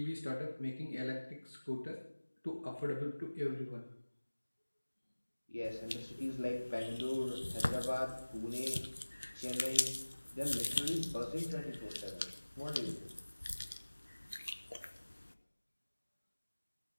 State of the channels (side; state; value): both; inverted; correlation -1.00